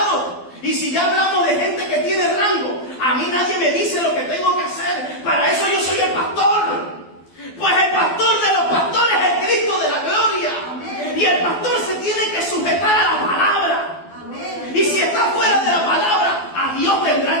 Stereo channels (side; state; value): right; late; 12 ms